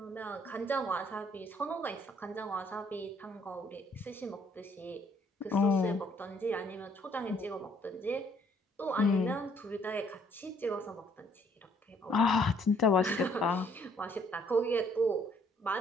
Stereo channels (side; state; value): both; normal; correlation 0.64